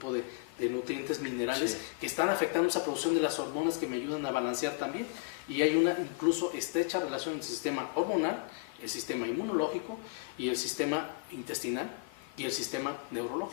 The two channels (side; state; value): right; quieter; 26.3 dB